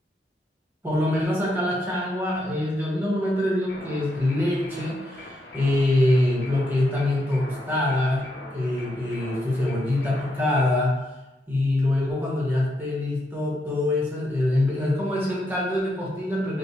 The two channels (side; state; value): both; normal; correlation 0.80